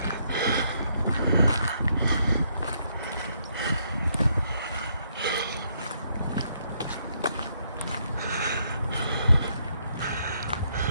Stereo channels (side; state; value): both; inverted; correlation -0.74